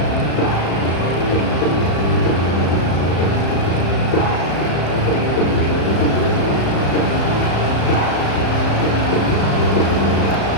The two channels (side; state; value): right; late; 35 ms